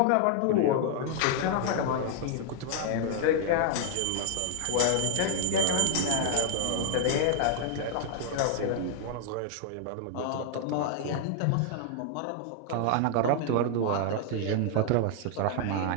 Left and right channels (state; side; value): different; both; correlation 0.00